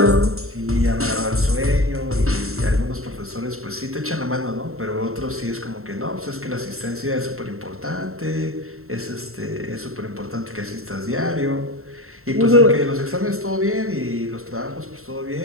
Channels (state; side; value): late; left; 0.63 ms